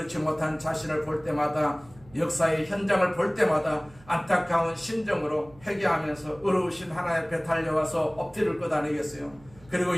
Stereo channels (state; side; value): noise; right; hum, 25 dB below the sound